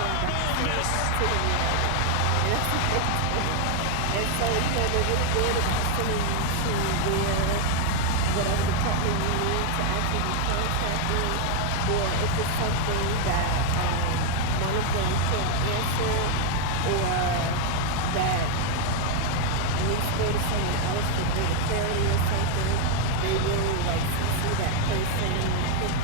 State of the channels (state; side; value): different; both; correlation 0.00